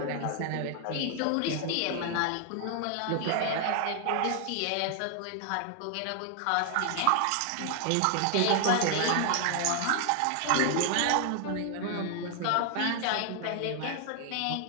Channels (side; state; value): both; different; correlation 0.00